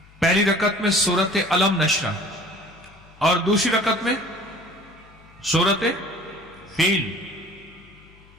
پہلی رکعت میں سورت علم نشرہ اور دوسری رکعت میں سورت فیل۔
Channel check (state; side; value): noise; left; hum, 26 dB below the sound